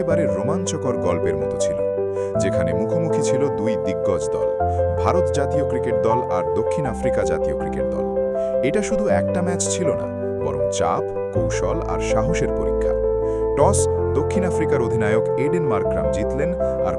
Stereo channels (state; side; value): identical; both; correlation 1.00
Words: রোমাঞ্চকর গল্পের মতো ছিল, যেখানে মুখোমুখি ছিল দুই দিগ্গজ দল, ভারত জাতীয় ক্রিকেট দল আর দক্ষিণ আফ্রিকা জাতীয় ক্রিকেট দল। এটা শুধু একটা ম্যাচ ছিল না, বরং চাপ, কৌশল আর সাহসের পরীক্ষা। টস দক্ষিণ আফ্রিকার অধিনায়ক এডেন মার্করাম জিতলেন আর